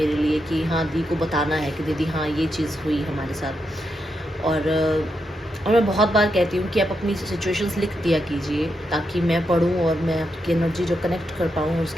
लिए कि हाँ दी को बताना है कि दीदी हाँ ये चीज़ हुई हमारे साथ। और मैं बहुत बार कहती हूँ कि आप अपनी सिचुएशंस लिख दिया कीजिए, ताकि मैं पढ़ूँ और मैं आपकी एनर्जी जो कनेक्ट कर पाऊँ,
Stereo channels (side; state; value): both; normal; correlation 0.83